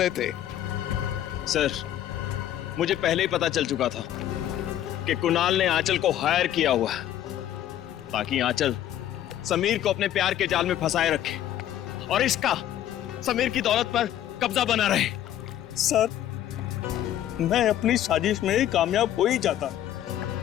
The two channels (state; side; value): quieter; right; 11.8 dB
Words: थे? सर, मुझे पहले ही पता चल चुका था कि कुणाल ने आंचल को हायर किया हुआ है ताकि आंचल समीर को अपने प्यार के जाल में फंसाए रखे और इसका समीर की दौलत पर कब्जा बना रहे। सर, मैं अपनी साजिश में कामयाब हो ही जाता,